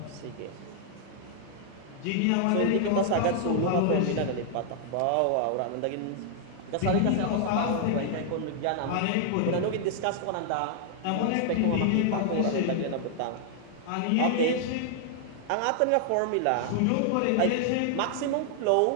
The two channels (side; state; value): both; different; correlation -0.01